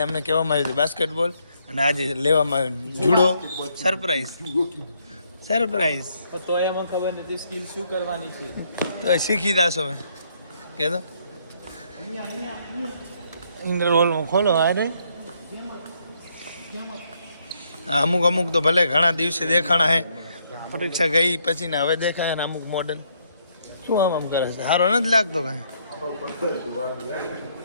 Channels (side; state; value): both; inverted; correlation -0.71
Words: અમને કહેવામાં આવ્યું હતું બાસ્કેટબોલ, અને આજે લેવામાં આવ્યું જુડો. સરપ્રાઈઝ તો એમાં ખબર નથી સ્કિલ શું કરવાની છે. તો શીખી જાશો મેં કહેતો ઇન્ટરવોલમાં ખોલો. અરે અમુક અમુક તો ભલે ઘણા દિવસે દેખાણા હે, પરીક્ષા ગઈ પછી ને હવે દેખાય ને અમુક મોડર્ન. શું આમ કરે છે? સારો નથી લાગતો કાંઈ.